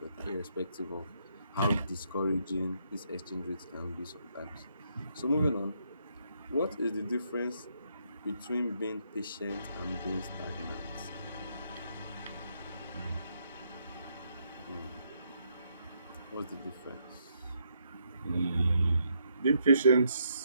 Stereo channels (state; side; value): inverted; both; correlation -0.75